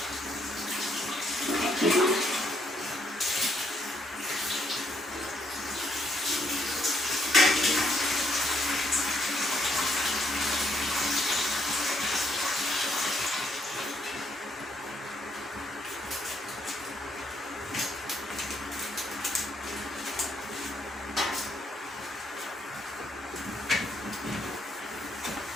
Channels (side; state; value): both; normal; correlation 0.73